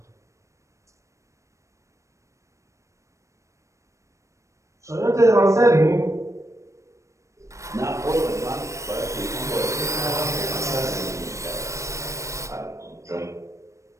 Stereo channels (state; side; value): late; left; 0.15 ms